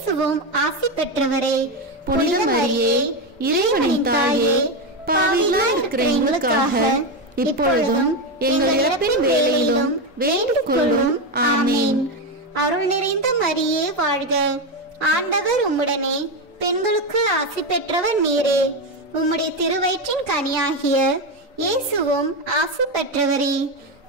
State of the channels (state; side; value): normal; both; correlation 0.12